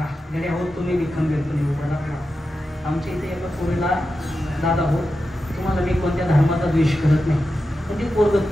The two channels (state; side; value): normal; both; correlation 0.90